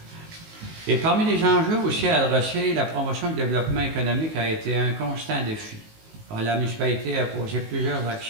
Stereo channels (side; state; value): left; late; 19 ms